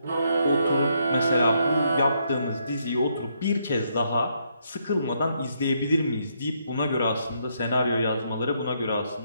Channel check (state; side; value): inverted; both; correlation -0.74